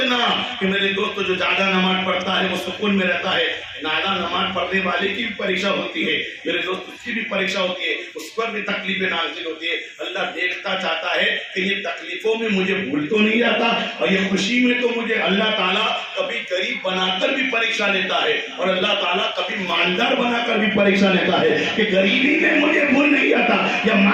کہ میرے دوست جو زیادہ نماز پڑھتا ہے وہ سکون میں رہتا ہے، زیادہ نماز پڑھنے والے کی بھی پریکشا ہوتی ہے میرے دوست، اس کی بھی پریکشا ہوتی ہے، اس پر بھی تکلیفیں نازل ہوتی ہے۔ اللہ دیکھتا چاہتا ہے کہ یہ تکلیفوں میں مجھے بھول تو نہیں جاتا اور یہ خوشی میں تو مجھے اللہ تعالیٰ کبھی غریب بنا کر بھی پریکشا لیتا ہے اور اللہ تعالیٰ کبھی مالدار بنا کر بھی پریکشا لیتا ہے کہ غریبی میں مجھے بھول نہیں جاتا یا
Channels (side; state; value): both; identical; correlation 1.00